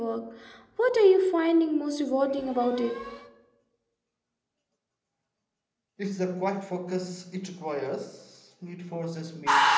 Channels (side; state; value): both; identical; correlation 1.00